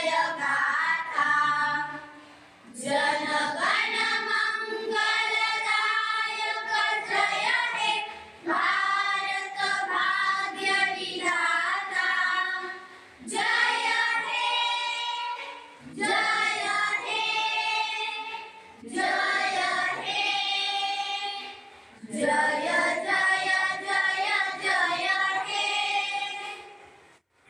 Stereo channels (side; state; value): both; identical; correlation 1.00